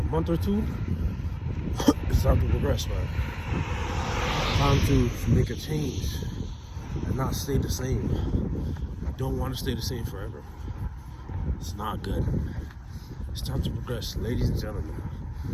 month or two, it's time to progress, man. Time to make a change and not stay the same. You don't want to stay the same forever. It's not good. It's time to progress, ladies and gentlemen.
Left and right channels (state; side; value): identical; both; correlation 1.00